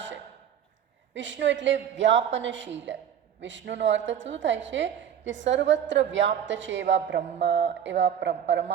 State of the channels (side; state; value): left; quieter; 9.2 dB